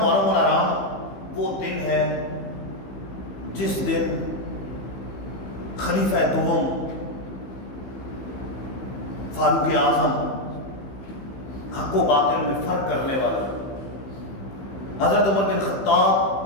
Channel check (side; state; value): right; late; 15 ms